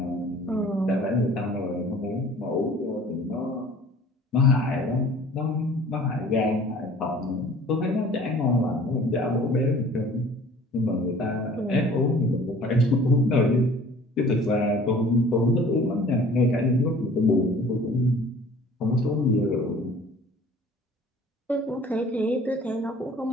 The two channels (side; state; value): both; normal; correlation 0.49